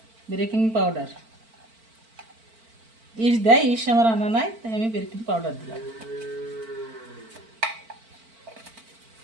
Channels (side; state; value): left; late; 4.5 ms